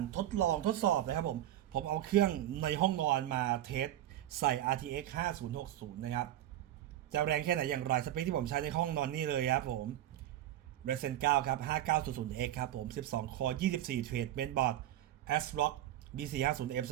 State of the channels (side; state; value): left; quieter; 13.0 dB